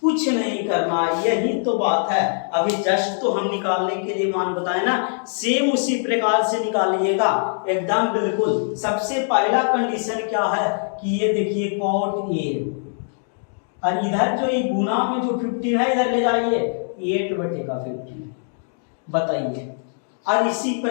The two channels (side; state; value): right; silent; digital silence